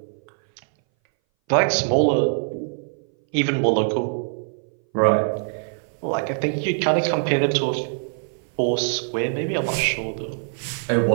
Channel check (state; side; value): silent; left; 60 dB below the other